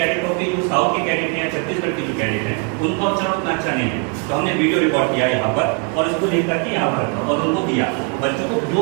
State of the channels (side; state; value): left; quieter; 37.8 dB